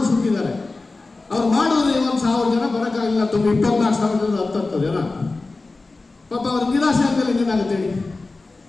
ಸುತ್ತಿದ್ದಾರೆ. ಅವ್ರು ಮಾಡಿದ್ರೆ 1,000 ಜನ ಬರೋಕ್ಕಾಗಿಲ್ಲ. 24,000 10 ಜನ ಪಾಪ ಅವ್ರಿಗೆ ನಿರಾಶೆ ಆಗ್ತದೆ. ಏನಾಗುತ್ತೆ ಹೇಳಿ?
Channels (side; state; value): right; quieter; 3.5 dB